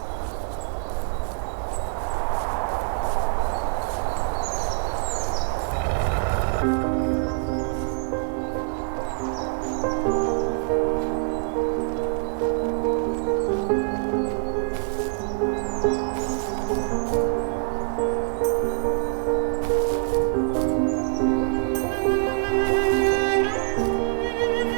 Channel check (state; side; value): silent; left; digital silence